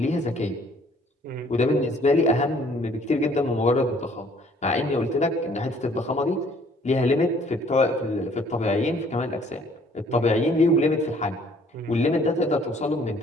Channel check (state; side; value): normal; both; correlation 0.59